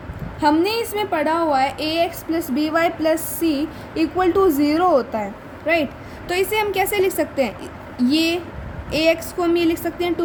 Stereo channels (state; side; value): identical; both; correlation 1.00